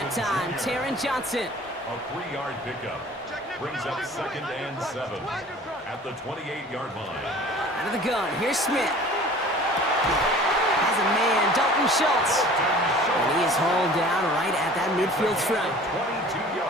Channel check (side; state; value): both; normal; correlation 0.46